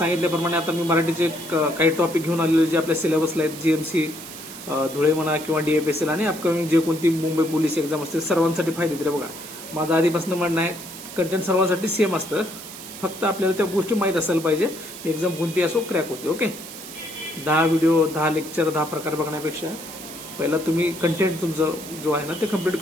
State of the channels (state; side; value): noise; right; hiss, 13 dB below the sound